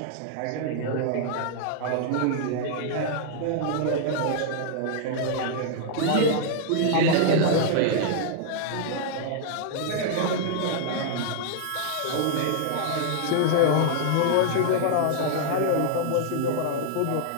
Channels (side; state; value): both; different; correlation -0.01